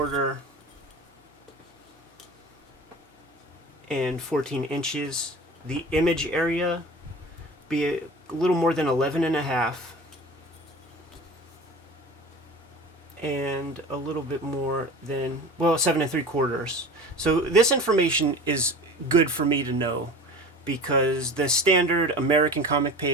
and 14 inches. The image area be a little more than 11.5 and a little bit more than 7 3/4. So this information is good for me to know because the standard American comic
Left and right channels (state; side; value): normal; both; correlation 0.37